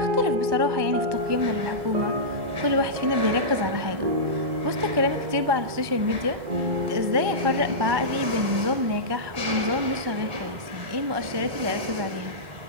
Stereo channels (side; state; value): left; late; 1.4 ms